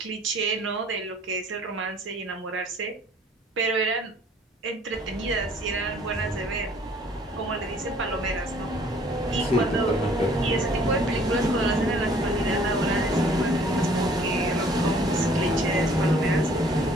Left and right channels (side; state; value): both; normal; correlation 0.56